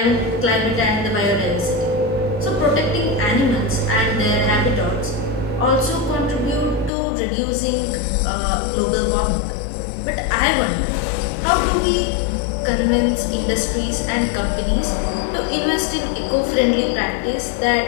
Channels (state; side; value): drops out; right; at 6.9 s